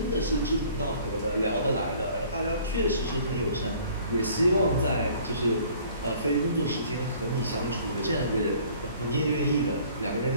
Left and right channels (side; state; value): both; inverted; correlation -0.54